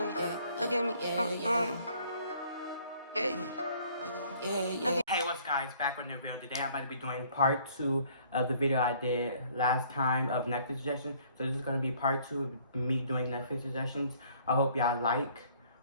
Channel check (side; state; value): both; inverted; correlation -0.59